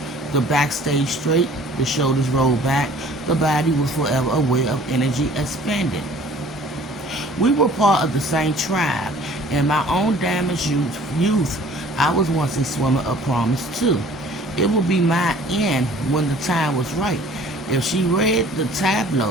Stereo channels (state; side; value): normal; both; correlation 0.51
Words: The back stayed straight, the shoulders rolled back, the body was forever aware of energy expended. We were part of the same tribe. In my own damaged youth, I was once a swimmer of promise too. It would be my end when the time was right. If she read the